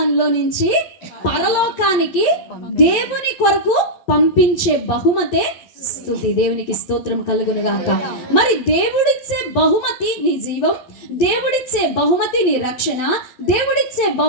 నుంచి పరలోకానికి దేవుని కొరకు పంపించే బహుమతే స్తుతి. దేవునికి స్తోత్రం కలుగును గాక. మరి దేవుడిచ్చే బహుమతి నీ జీవం, దేవుడిచ్చే బహుమతి నీ రక్షణ, దేవుడిచ్చే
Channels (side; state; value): right; late; 12 ms